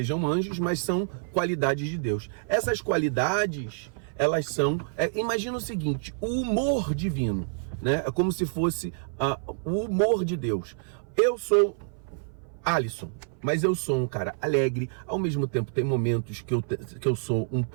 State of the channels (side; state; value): left; silent; 56 dB below the other